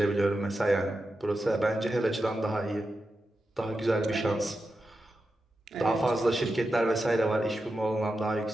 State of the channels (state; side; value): normal; both; correlation 0.90